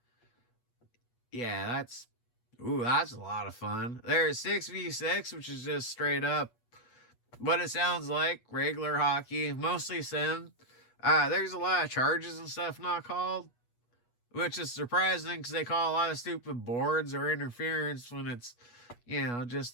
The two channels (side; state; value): right; late; 8.3 ms